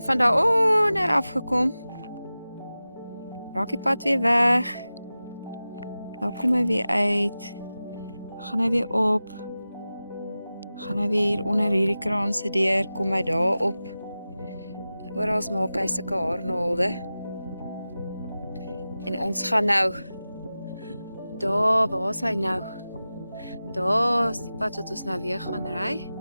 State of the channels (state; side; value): inverted; both; correlation -0.95